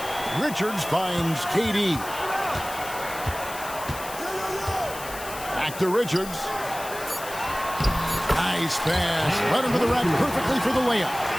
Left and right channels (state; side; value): noise; left; hiss, 12 dB below the sound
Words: Richards finds KD. Back to Richards. Nice pass. Right into the rack perfectly for the layup.